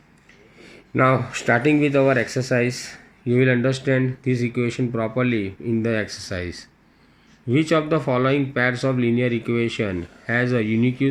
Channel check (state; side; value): identical; both; correlation 1.00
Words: Now starting with our exercise, you will understand this equation properly in the exercise. Which of the following pairs of linear equation has a